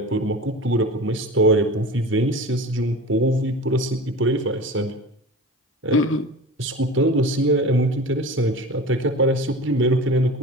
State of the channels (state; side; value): normal; both; correlation 0.34